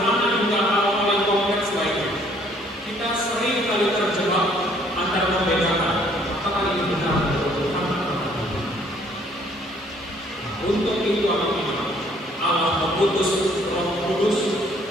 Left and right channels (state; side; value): normal; both; correlation 0.62